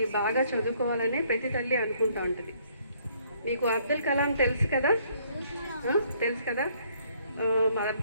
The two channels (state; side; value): inverted; both; correlation -0.65